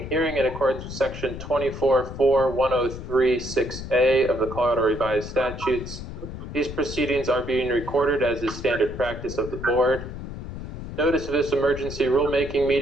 hearing in accordance with Section 24.4.1036A of the Colorado Revised Statutes. These proceedings are being recorded as is standard practice of the board. Notice of this emergency rulemaking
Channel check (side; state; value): left; noise; rumble, 9 dB below the sound